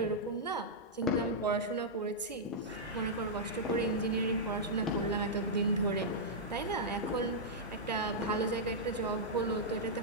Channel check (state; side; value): normal; both; correlation -0.09